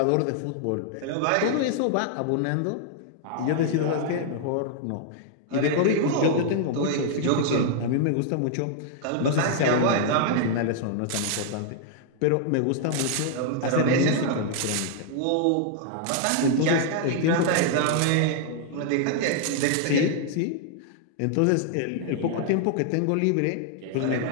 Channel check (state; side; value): different; both; correlation -0.01